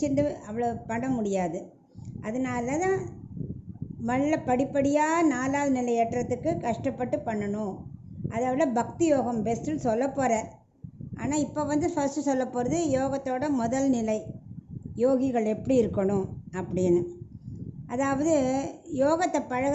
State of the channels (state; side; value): identical; both; correlation 1.00